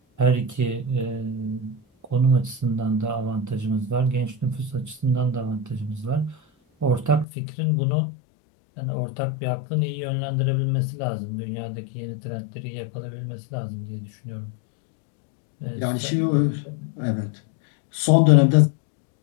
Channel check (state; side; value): drops out; right; at 7.2 s